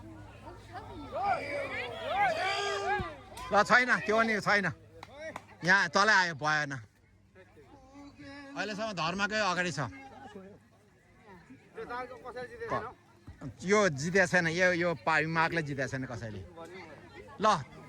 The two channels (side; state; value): both; identical; correlation 1.00